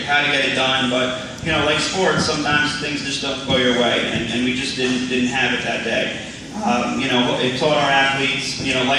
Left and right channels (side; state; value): both; identical; correlation 1.00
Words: how to get it done, but you know, like sports, sometimes things just don't go your way, and we just didn't have it that day. You know, it taught our athletes, you know,